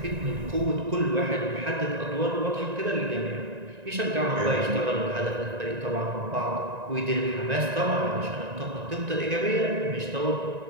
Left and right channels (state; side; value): late; left; 1.9 ms